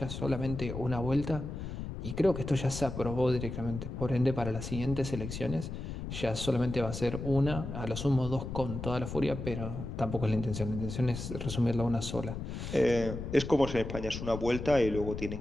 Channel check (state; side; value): noise; left; rumble, 7 dB below the sound